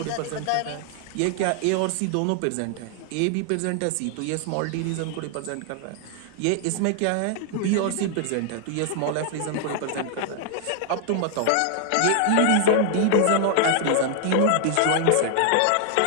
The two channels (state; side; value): different; both; correlation 0.00